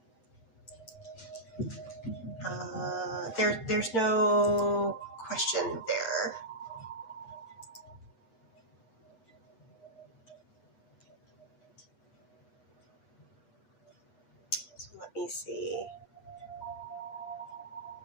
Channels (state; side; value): late; right; 8.1 ms